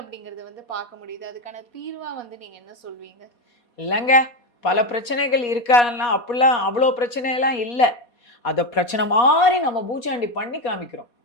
வந்து பார்க்க முடியுது. அதுக்கான தீர்வா வந்து நீங்க என்ன சொல்வீங்க? இல்லைங்க, பல பிரச்சனைகள் இருக்கான்னா அப்படிலாம் அவ்வளோ பிரச்சனையெல்லாம் இல்லை. அதை பிரச்சனை மாதிரி நம்ம பூச்சாண்டி பண்ணி காமிக்கிறோம்.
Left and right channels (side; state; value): right; late; 4.2 ms